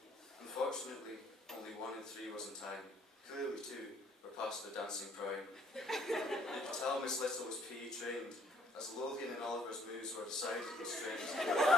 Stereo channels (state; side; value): normal; both; correlation 0.64